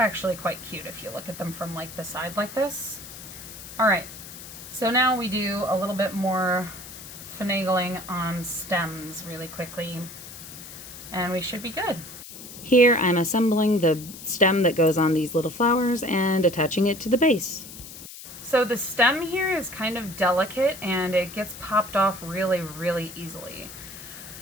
quite cute if you look at them from like the side like this. All right, so now we do a little bit more finagling on stems really quickly, and we should be good. Here I'm assembling the stem that goes on these little flowers and attaching it to the base. So the stem here is kind of delicate and it gets popped off really, really easily.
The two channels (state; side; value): noise; left; hiss, 14 dB below the sound